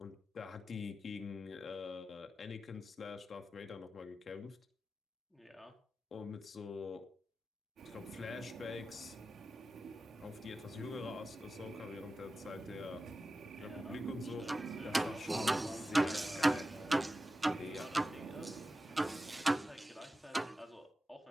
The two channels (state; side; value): normal; both; correlation 0.93